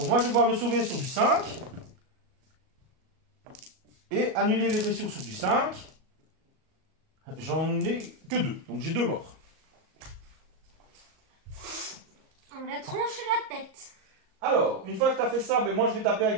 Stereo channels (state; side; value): late; left; 37 ms